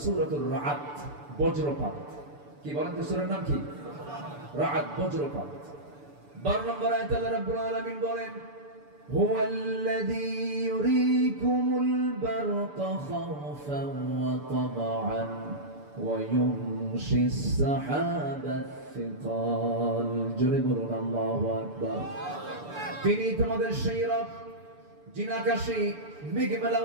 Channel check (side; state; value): left; late; 6.9 ms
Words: সূরাতুর রাআদ, বজ্রপাত। কি বলেন তো সূরার নাম কি? রাআদ বজ্রপাত। 12 নম্বর আয়াতে আল্লাহ রাব্বুল আলামিন বলেন হুয়াল্লাযী ইউরীকুমুল বারকা খাওফান ওয়া তামআন ওয়া ইউনশিস সাহাবাত সিকাল। জোরে বলুন আল্লাহু আকবার। তিনি তোমাদের সেই রব যিনি আকাশে মেঘমেলা